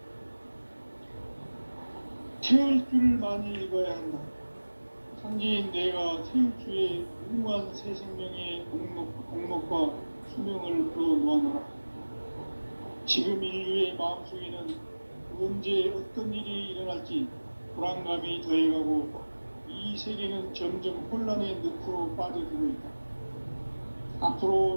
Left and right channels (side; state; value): both; inverted; correlation -1.00